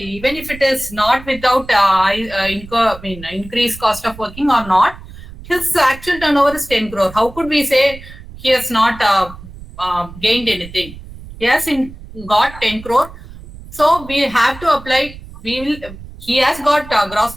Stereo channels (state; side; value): noise; right; rumble, 16 dB below the sound